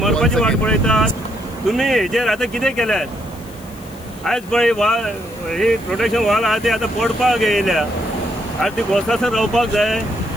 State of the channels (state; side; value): noise; left; hiss, 23 dB below the sound